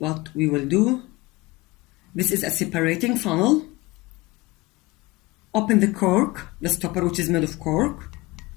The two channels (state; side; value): quieter; right; 21.7 dB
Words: will do. This is a separating funnel. Open the cork, the stopper which is made of cork.